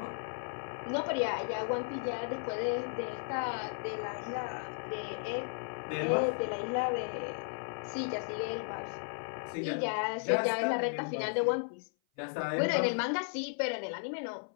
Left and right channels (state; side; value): silent; right; 55 dB below the other